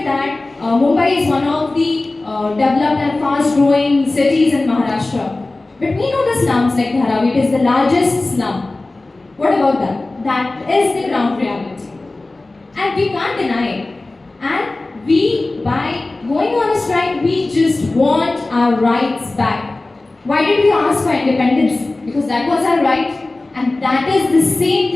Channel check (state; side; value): quieter; right; 3.0 dB